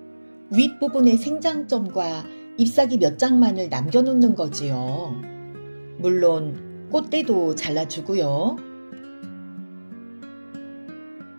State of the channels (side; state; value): both; inverted; correlation -1.00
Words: 윗부분의 생장점과 잎사귀 몇 장만을 남겨놓는 거지요. 물론 꽃대도 잘라주고요.